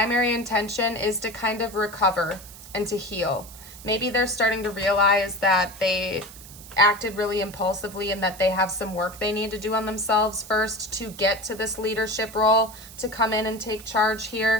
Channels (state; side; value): noise; right; hiss, 17 dB below the sound